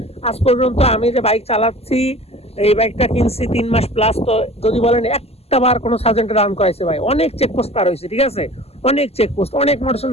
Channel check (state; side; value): late; right; 0.29 ms